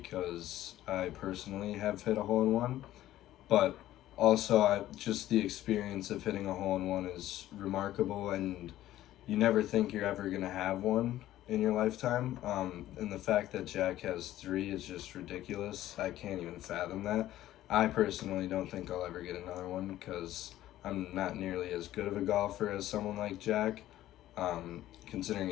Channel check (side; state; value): right; quieter; 14.0 dB